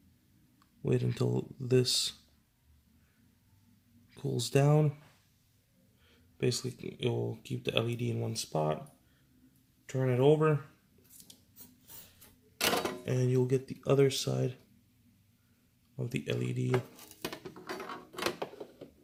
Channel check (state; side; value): identical; both; correlation 1.00